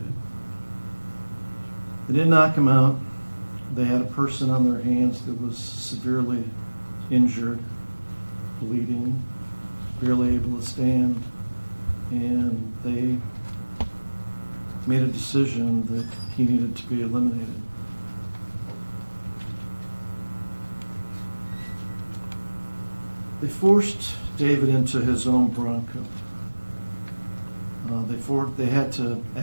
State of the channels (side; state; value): both; inverted; correlation -1.00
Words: They didn't knock him out. They had a person on their hands that was severely injured, bleeding, barely able to stand, and they made a decision that he needed to be eliminated. They forced David into his own Bronco. They had to